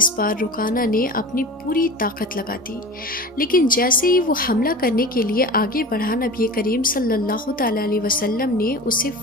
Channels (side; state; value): both; normal; correlation 0.35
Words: بار رکانہ نے اپنی پوری طاقت لگا دی، لیکن جیسے ہی وہ حملہ کرنے کے لیے آگے بڑھا، نبی کریم صلی اللہ تعالیٰ علیہ وسلم نے اسے